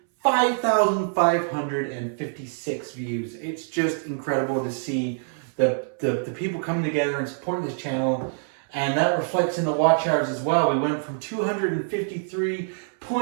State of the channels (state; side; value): silent; left; 62 dB below the other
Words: 5,556 views. It's just incredible to see the people coming together and supporting this channel, and that reflects in the watch hours as well. We went from